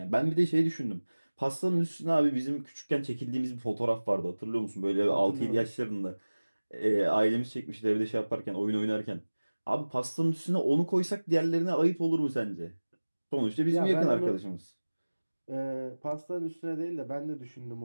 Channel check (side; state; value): both; inverted; correlation -1.00